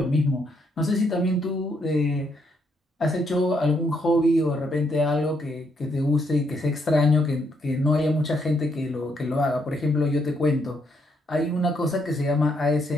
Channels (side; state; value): both; normal; correlation 0.75